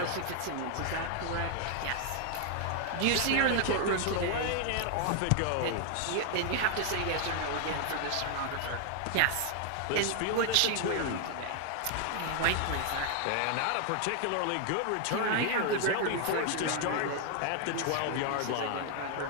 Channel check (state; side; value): different; both; correlation 0.00